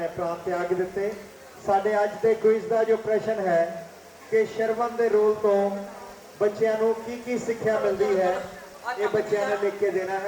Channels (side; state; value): both; identical; correlation 1.00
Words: ਪ੍ਰਾਣ ਤਿਆਗ ਦਿੱਤੇ। ਸਾਡੇ ਅੱਜ ਦੇ ਕੁਇਜ਼ ਦਾ ਜੋ ਪ੍ਰਸ਼ਨ ਹੈ ਕਿ ਸ਼ਰਵਣ ਦੇ ਰੋਲ ਤੋਂ ਬੱਚਿਆਂ ਨੂੰ ਕੀ ਕੀ ਸਿੱਖਿਆ ਮਿਲਦੀ ਹੈ, ਇਹ ਬੱਚਿਆਂ ਨੇ ਲਿਖ ਕੇ ਦੇਣਾ